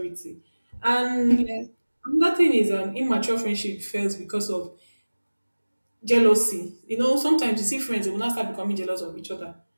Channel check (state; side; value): inverted; both; correlation -1.00